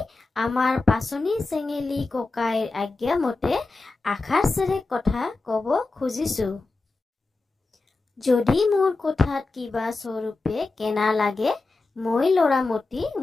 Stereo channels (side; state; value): right; quieter; 3.6 dB